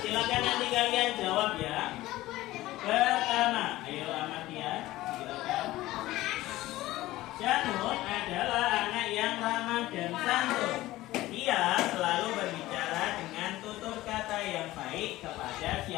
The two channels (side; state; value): right; quieter; 16.9 dB